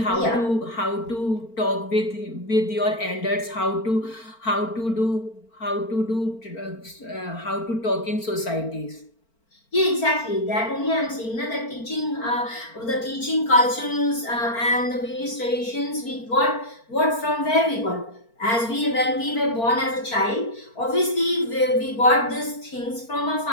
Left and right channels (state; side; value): late; right; 4.4 ms